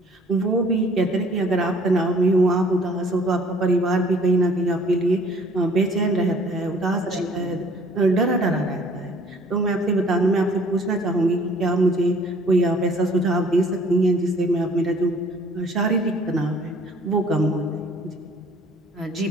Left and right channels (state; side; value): normal; both; correlation 0.56